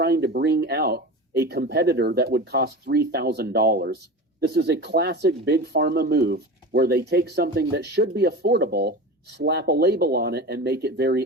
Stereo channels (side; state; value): both; normal; correlation 0.30